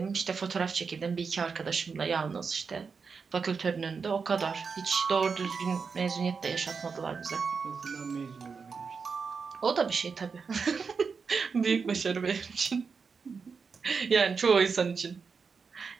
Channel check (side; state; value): left; quieter; 5.4 dB